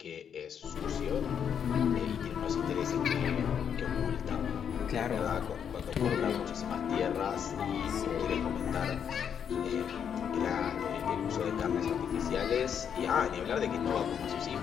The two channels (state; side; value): quieter; right; 8.0 dB